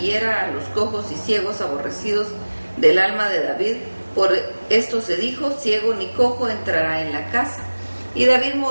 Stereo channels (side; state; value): both; inverted; correlation -1.00